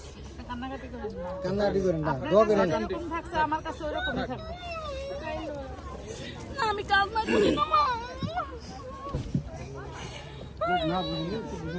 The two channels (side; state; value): both; identical; correlation 1.00